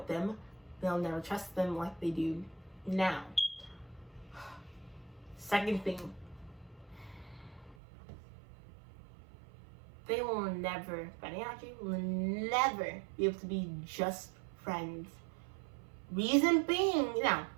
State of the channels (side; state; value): left; drops out; at 7.8 s